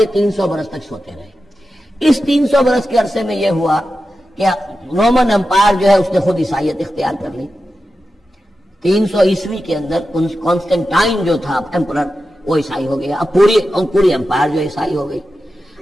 300 برس تک سوتے رہے۔ اس 300 برس کے عرصے میں یہ ہوا کہ رومن امپائر جو ہے اس نے خود عیسائیت اختیار کر لی۔ 300 عیسوی کے اندر کانسٹنٹائن جو تھا ایمپرر وہ عیسائی ہو گیا، اب پوری امپائر جو عیسائی ہو گئی۔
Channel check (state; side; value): normal; both; correlation 0.91